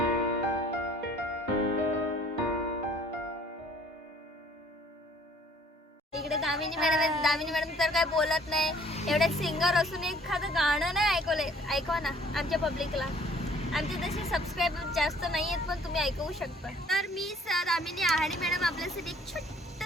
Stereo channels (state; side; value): normal; both; correlation 0.56